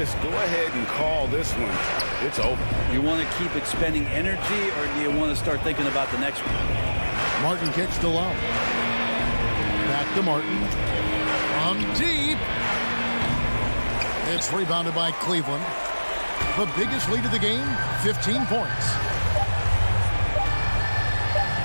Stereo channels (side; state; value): both; inverted; correlation -1.00